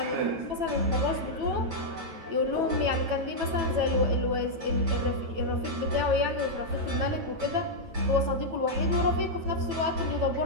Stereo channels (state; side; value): late; left; 9.1 ms